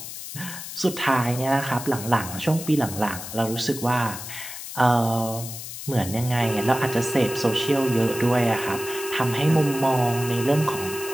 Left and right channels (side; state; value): left; noise; hiss, 10 dB below the sound